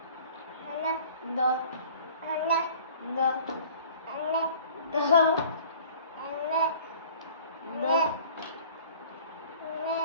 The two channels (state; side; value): inverted; both; correlation -0.48